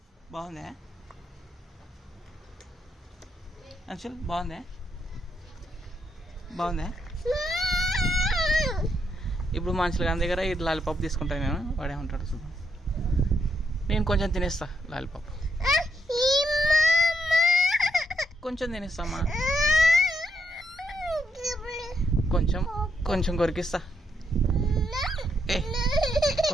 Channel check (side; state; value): both; normal; correlation 0.78